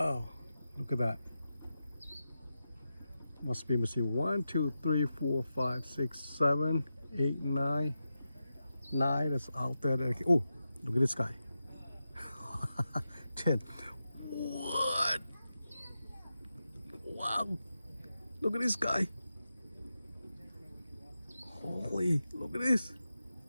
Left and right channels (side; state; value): both; inverted; correlation -0.91